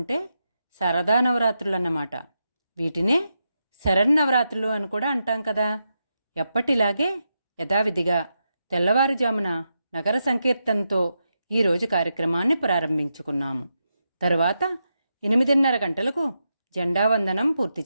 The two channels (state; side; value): inverted; both; correlation -0.86